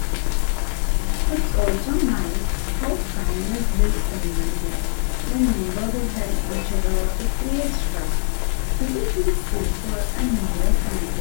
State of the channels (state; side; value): silent; right; 59 dB below the other